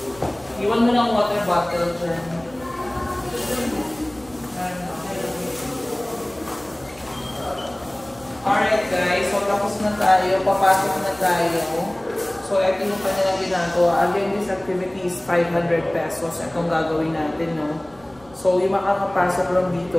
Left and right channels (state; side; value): noise; right; rumble, 26 dB below the sound